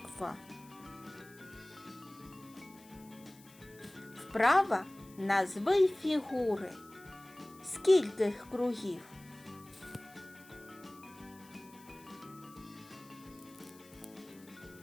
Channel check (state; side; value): noise; left; hiss, 23 dB below the sound